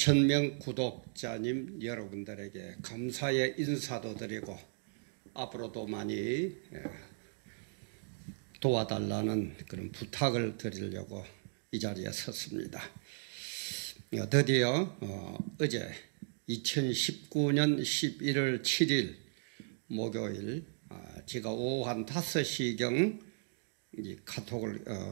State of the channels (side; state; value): left; silent; digital silence